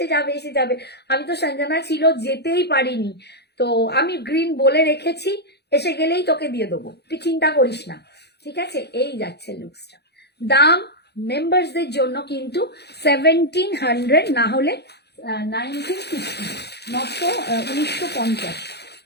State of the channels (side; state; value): right; late; 0.48 ms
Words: যাবে এসে যাবে। আমি তো সঞ্জনা ছিল যেতেই পারিনি, তো আমি গ্রিন বলে রেখেছি, এসে গেলেই তোকে দিয়ে দেবো, তুই চিন্তা করিস না, ঠিক আছে? এই যাচ্ছে লুকসটা। দাম মেম্বারসদের জন্য কিন্তু 1700, না হলে 1950, 1950।